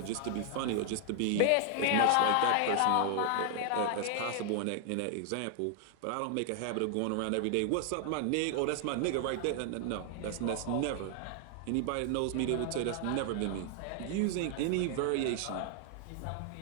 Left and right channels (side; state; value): both; different; correlation 0.00